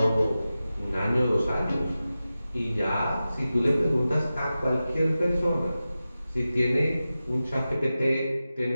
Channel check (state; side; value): inverted; both; correlation -0.94